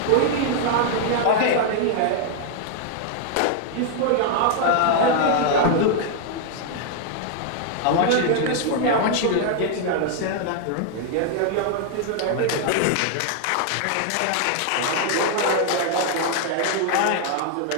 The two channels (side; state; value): both; different; correlation 0.00